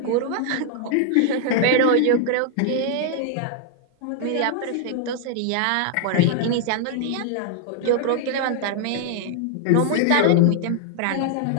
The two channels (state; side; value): different; both; correlation 0.00